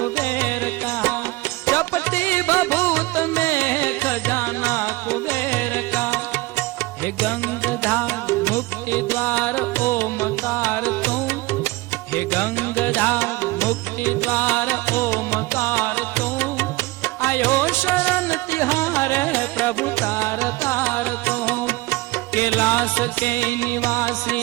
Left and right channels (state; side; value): quieter; left; 20.9 dB